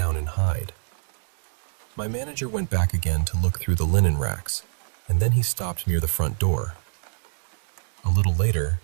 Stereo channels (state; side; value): silent; left; digital silence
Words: and hide. My manager went back again to look through the linen racks, and then he stopped near the front door. A little later,